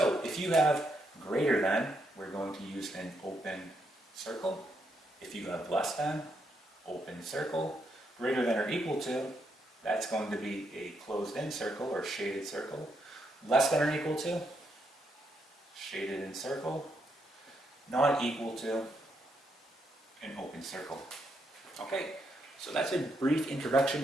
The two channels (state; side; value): normal; both; correlation 0.78